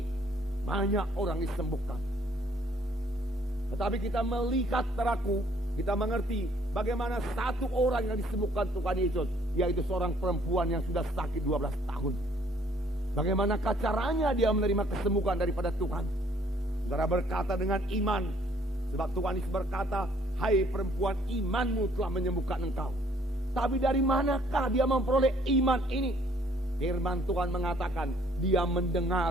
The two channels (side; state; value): both; normal; correlation 0.62